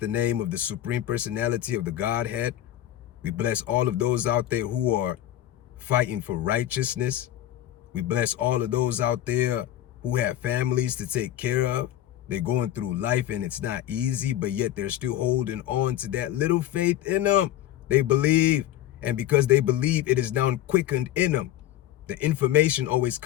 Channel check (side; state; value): right; quieter; 13.1 dB